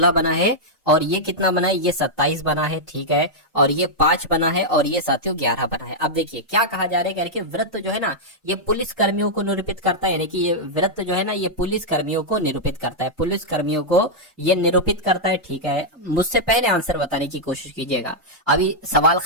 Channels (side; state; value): both; normal; correlation -0.06